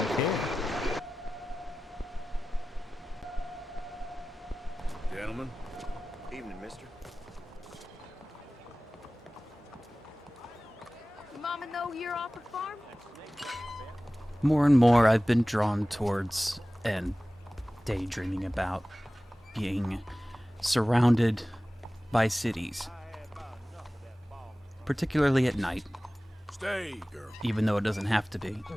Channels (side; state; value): both; normal; correlation 0.97